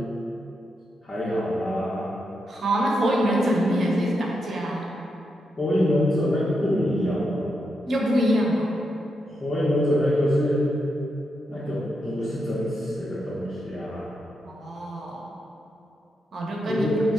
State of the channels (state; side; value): normal; both; correlation 0.84